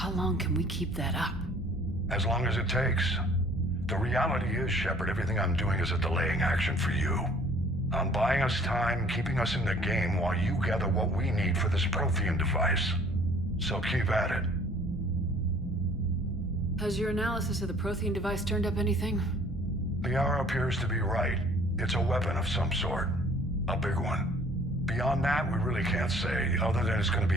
long can we keep that up? As long as it takes. The reality is, Shepard, everything I'm doing is a delaying action for you. I'm buying us time, keeping us in the game while you gather what we need for this Prothean device. So keep at it. Has your analysis of the Prothean device turned up anything? The hour appears to be right. It's a weapon of some sort. A big one. Beyond that, we really can't say, other than it's going to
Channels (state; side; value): normal; both; correlation 0.55